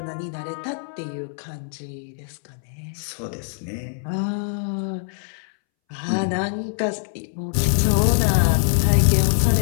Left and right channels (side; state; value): right; silent; 63 dB below the other